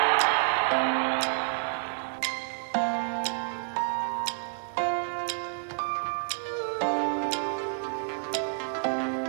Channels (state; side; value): silent; left; digital silence